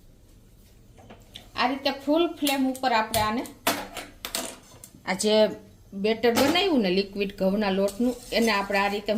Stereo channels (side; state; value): both; identical; correlation 1.00